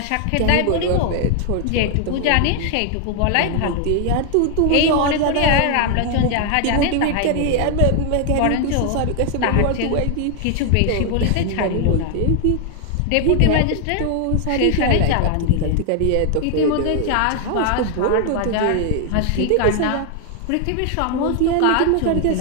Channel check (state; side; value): different; both; correlation 0.00